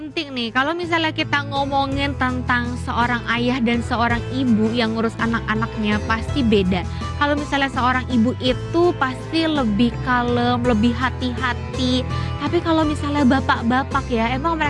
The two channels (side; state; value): both; identical; correlation 1.00